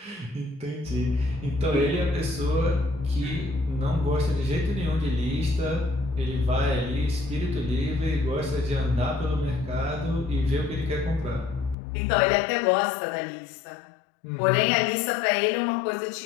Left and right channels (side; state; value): right; drops out; at 11.8 s